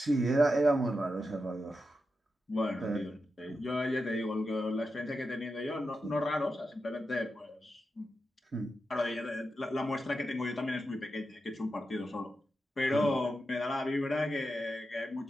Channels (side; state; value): both; normal; correlation 0.88